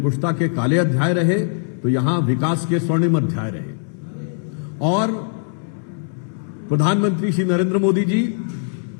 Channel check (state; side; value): silent; right; digital silence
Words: के काले अध्याय रहे, तो यहां विकास के स्वर्णिम अध्याय रहे। और प्रधानमंत्री श्री नरेंद्र मोदी जी